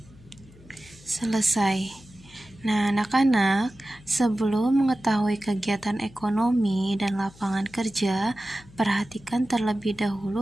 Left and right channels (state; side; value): noise; left; hum, 23 dB below the sound